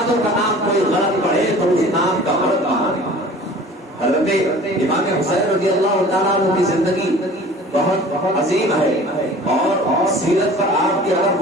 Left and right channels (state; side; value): normal; both; correlation 0.45